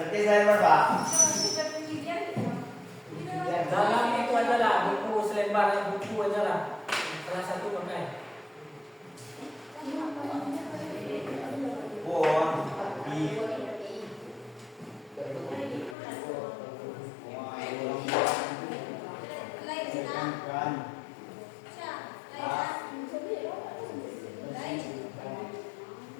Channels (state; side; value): drops out; right; at 16.0 s